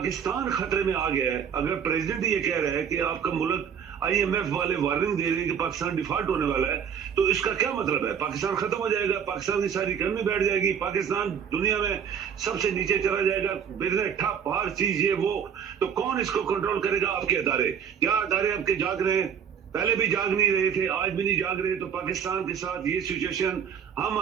خطرے میں آ گیا ہے؟ اگر پریزیڈنٹ یہ کہہ رہا ہے کہ آپ کا ملک، آئی ایم ایف والے وارننگ دے رہے ہیں کہ پاکستان ڈیفالٹ ہونے والا ہے، تو اس کا کیا مطلب ہے؟ پاکستان ختم ہو جائے گا، پاکستان کی ساری اکانومی بیٹھ جائے گی، پاکستان دنیا میں سب سے نیچے چلا جائے گا، بزنس ٹھپ، ہر چیز یہ وہ. تو کون اس کو کنٹرول کرے گا؟ آپ کے ادارے. کیا ادارے آپ کے جاگ رہے ہیں؟ پہلے بھی جاگ نہیں رہے تھے، آج بھی نہیں جاگ رہے. تو پاکستان کے ساتھ یہ سچویشن ہم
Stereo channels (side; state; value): left; quieter; 7.7 dB